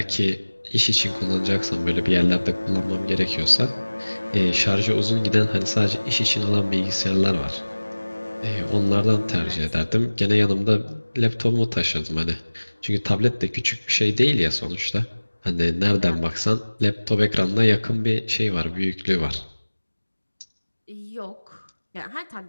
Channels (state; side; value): inverted; both; correlation -1.00